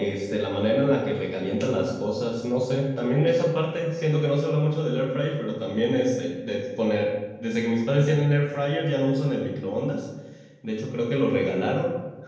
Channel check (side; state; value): both; identical; correlation 1.00